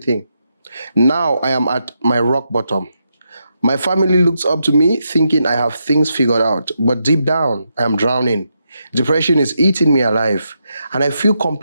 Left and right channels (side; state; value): both; inverted; correlation -0.83